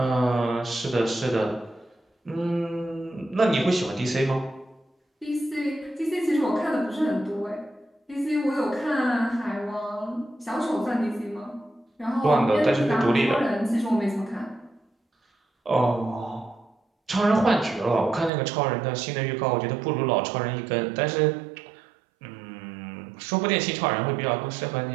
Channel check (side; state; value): left; drops out; at 18.3 s